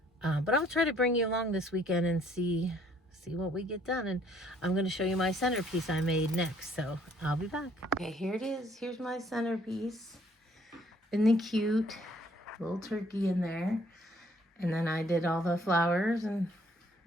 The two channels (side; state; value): both; normal; correlation 0.62